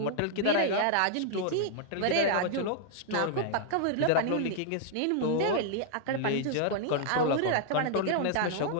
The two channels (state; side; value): different; both; correlation -0.01